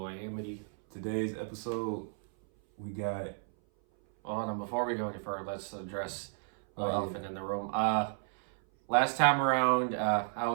Amity. Today's episode, we got... Hold on, before we go any further, let's address the elephant in the room. Last time around, I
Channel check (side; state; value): left; silent; 56 dB below the other